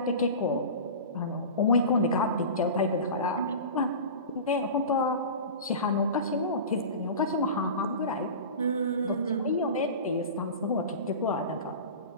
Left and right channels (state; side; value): inverted; both; correlation -0.32